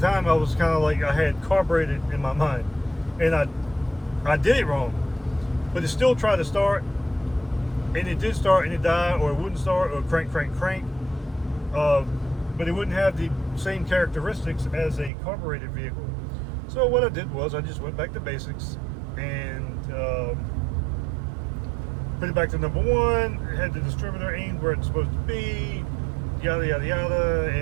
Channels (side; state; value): left; drops out; at 15.1 s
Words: I was kind of like, I had carbureted in my mind, and I did it wrong, but it still tried to start, and it did start, and it died, or it wouldn't start, or crank. But it wouldn't have the same characteristics as a carbureted vehicle. So what I did was I just went back to basics and put it back to number 1, had the distributor aimed where it's supposed to be, yada yada yada,